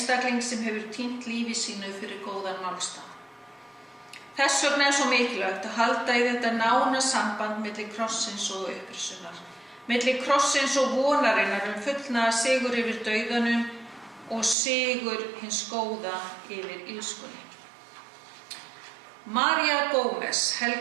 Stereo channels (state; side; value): drops out; left; at 14.6 s